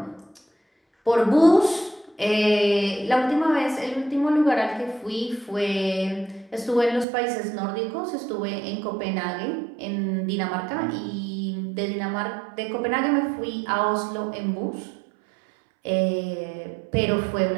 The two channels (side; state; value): left; drops out; at 7.1 s